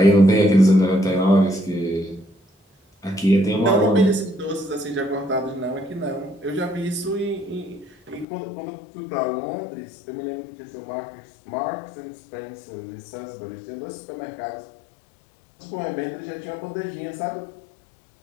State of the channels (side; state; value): right; drops out; at 8.2 s